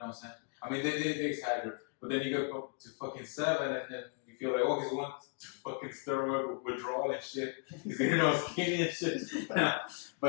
what I'm saying? I mean, they exaggerate. But then you go to fucking 7 and then you feel like, he's going to fucking steroid withdrawal and shit. He's getting all skinny and shit.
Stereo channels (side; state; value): right; quieter; 39.9 dB